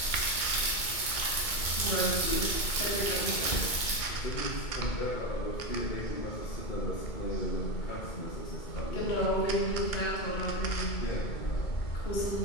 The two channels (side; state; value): right; late; 2.2 ms